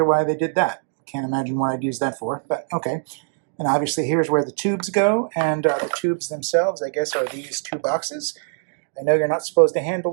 why they did that. Can't imagine what I'd use that for, but okay. And obviously here's where the tubes go, and the tubes themselves, I guess, are these two boxes. I know you're not supposed to handle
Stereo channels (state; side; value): silent; left; digital silence